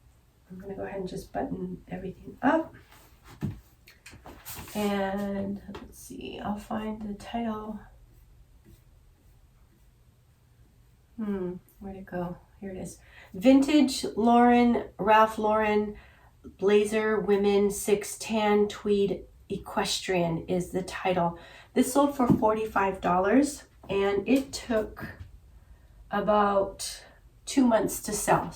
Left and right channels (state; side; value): identical; both; correlation 1.00